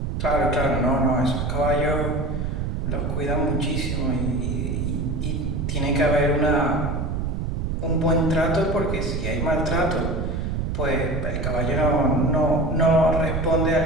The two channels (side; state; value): right; noise; rumble, 2 dB below the sound